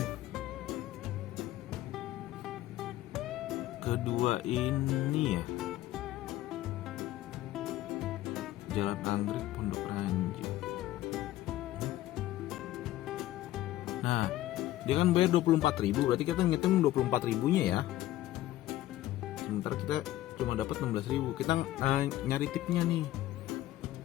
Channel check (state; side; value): quieter; right; 15.0 dB